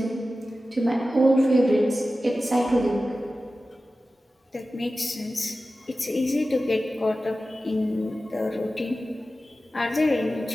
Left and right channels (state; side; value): normal; both; correlation 0.94